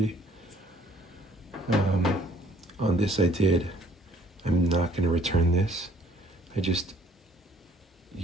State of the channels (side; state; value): both; normal; correlation 0.60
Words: On this I did. I'm not going to return this. I just